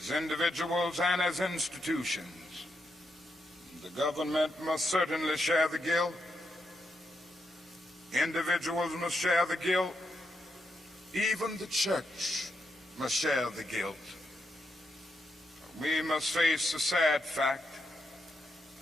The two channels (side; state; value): both; normal; correlation 0.83